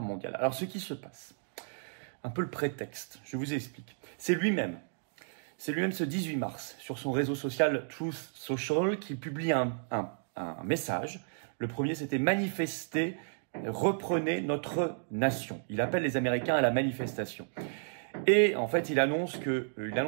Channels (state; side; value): silent; left; digital silence